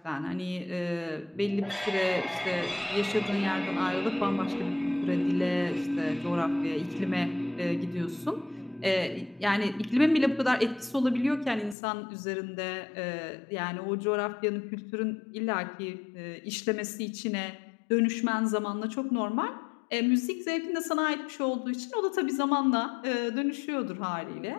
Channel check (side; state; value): right; drops out; at 11.8 s